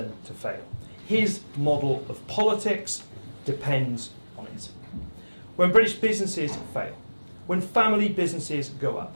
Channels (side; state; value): both; inverted; correlation -1.00